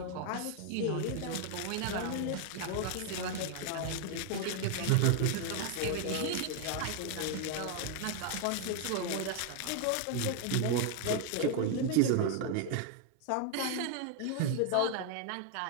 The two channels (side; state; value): both; different; correlation 0.01